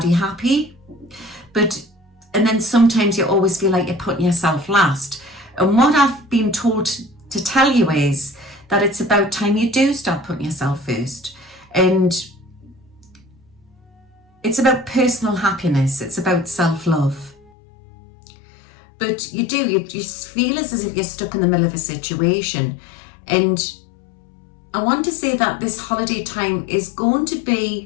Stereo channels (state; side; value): drops out; right; at 17.5 s